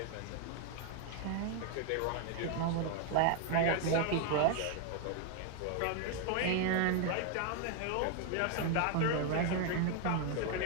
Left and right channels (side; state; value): both; different; correlation 0.01